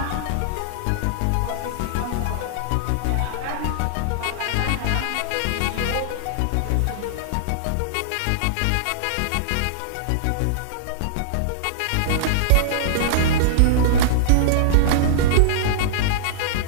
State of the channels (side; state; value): both; different; correlation -0.02